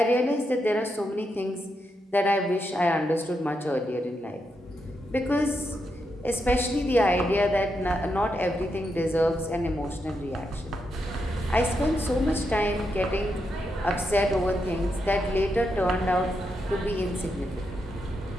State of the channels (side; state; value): both; normal; correlation 0.83